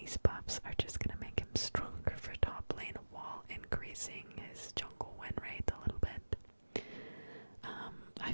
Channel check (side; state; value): both; inverted; correlation -1.00